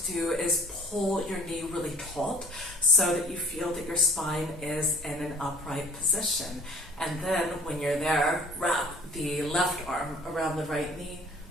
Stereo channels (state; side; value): normal; both; correlation 0.51